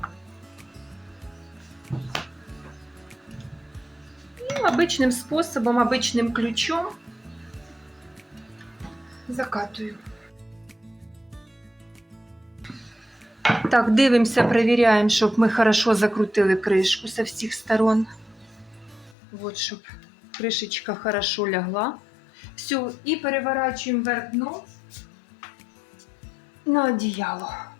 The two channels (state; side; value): drops out; right; at 19.2 s